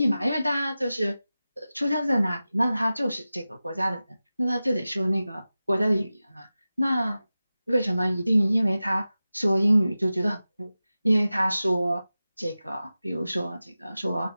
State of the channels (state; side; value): inverted; both; correlation -0.95